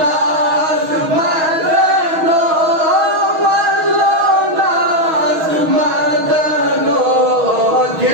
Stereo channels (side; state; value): left; late; 6.2 ms